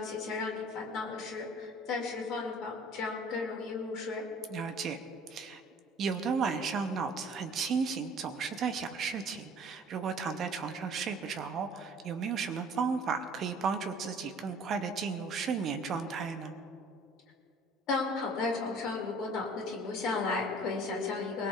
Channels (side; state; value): both; normal; correlation 0.50